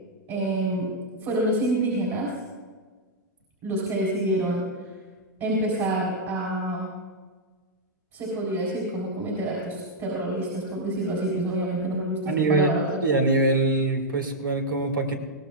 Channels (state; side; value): normal; both; correlation -0.05